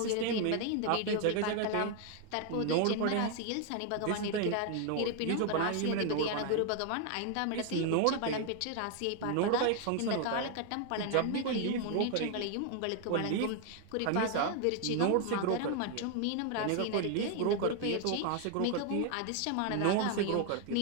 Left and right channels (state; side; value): different; both; correlation 0.00